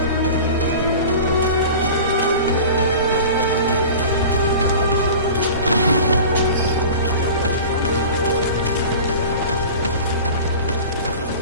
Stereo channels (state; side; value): inverted; both; correlation -0.37